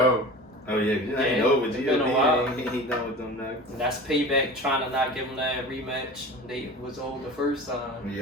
Oh yeah, you ain't over. It's been a while. He ain't done with them nuggets. And that's payback trying to not give them that rematch. They was old the first time.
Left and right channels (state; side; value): normal; both; correlation 0.36